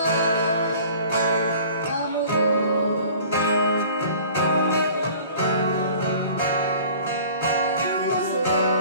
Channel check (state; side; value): inverted; both; correlation -0.48